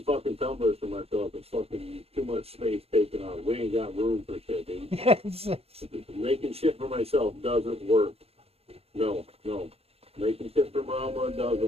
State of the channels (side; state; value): left; late; 0.29 ms